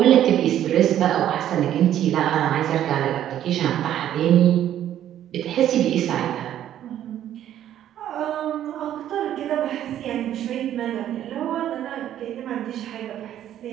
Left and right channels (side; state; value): left; quieter; 11.3 dB